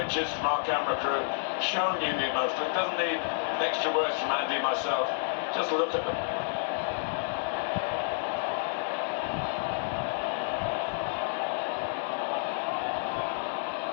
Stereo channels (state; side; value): silent; right; digital silence